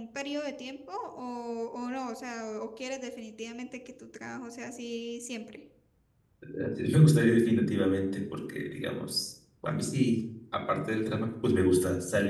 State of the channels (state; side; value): identical; both; correlation 1.00